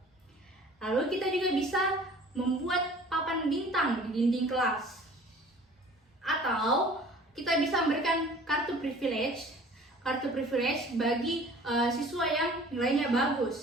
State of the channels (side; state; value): both; normal; correlation 0.48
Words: Lalu kita juga bisa membuat papan bintang di dinding kelas. Atau kita bisa memberikan kartu privilege bagi siswa yang nilainya